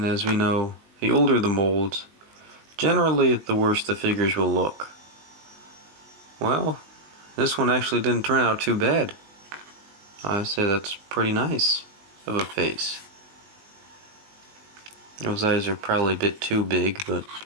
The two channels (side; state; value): left; late; 20 ms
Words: as we know, the older the molds, generally the worse the figures will look. Well, this one actually didn't turn out too bad. I say that's pretty nice of a face. Those eyes are probably a bit too big, but